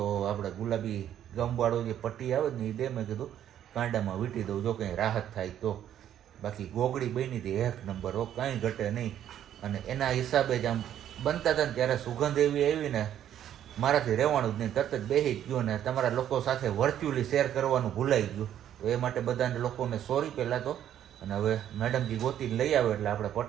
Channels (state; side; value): quieter; left; 10.7 dB